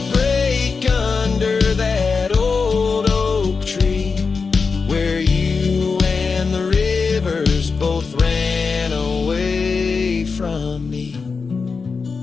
under that old oak tree, where you and the rivers both ran away from me.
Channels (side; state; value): right; quieter; 4.8 dB